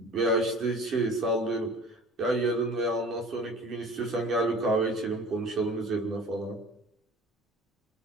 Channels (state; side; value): normal; both; correlation 0.43